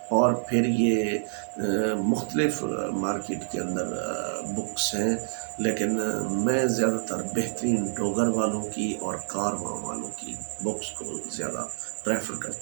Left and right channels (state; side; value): silent; left; digital silence